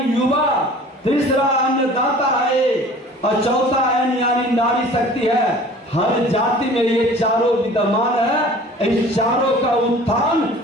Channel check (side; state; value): both; normal; correlation 0.46